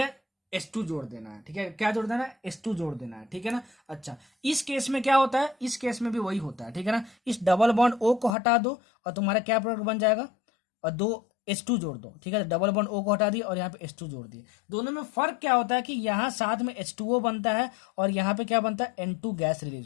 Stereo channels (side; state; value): right; drops out; at 8.3 s